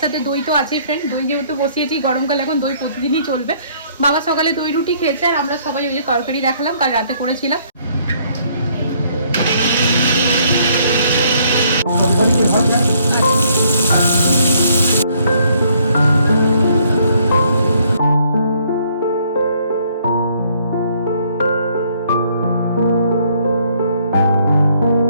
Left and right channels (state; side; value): inverted; both; correlation -0.65